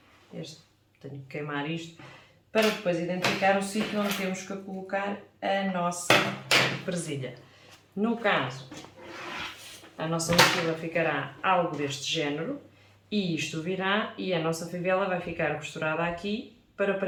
tenho que queimar isto, para depois identificar o sítio onde temos que colocar a nossa presilha. No caso, a nossa mochila ficará algo deste género e isto virá e a nossa fivela vai ficar costurada aqui para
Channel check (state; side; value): identical; both; correlation 1.00